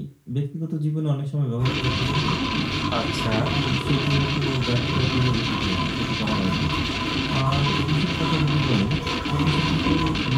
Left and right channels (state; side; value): identical; both; correlation 1.00